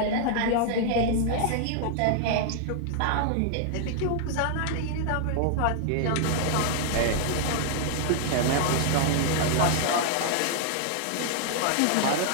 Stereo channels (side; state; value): both; different; correlation 0.00